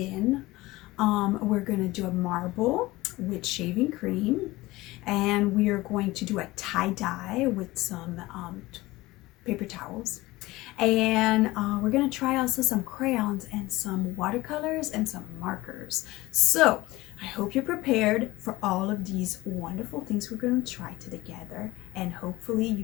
We're going to do a marble with shaving cream, and we are going to do a tie dye with some paper towels. And we're going to try also some crayons and some watercolors and some markers. So I hope you're prepared for all of these wonderful things we're going to try together, and hopefully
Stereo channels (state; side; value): quieter; right; 19.4 dB